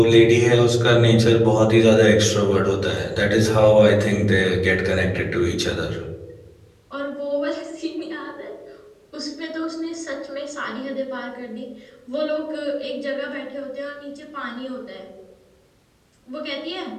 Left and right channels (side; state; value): both; identical; correlation 1.00